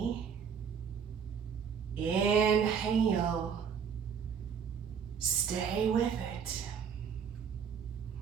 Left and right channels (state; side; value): quieter; left; 7.0 dB